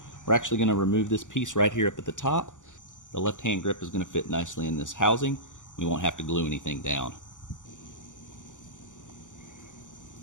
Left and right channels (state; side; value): late; right; 0.87 ms